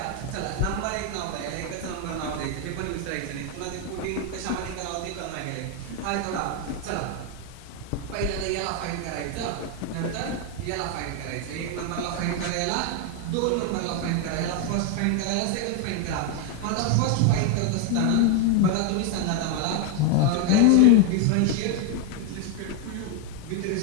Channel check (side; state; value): both; different; correlation 0.01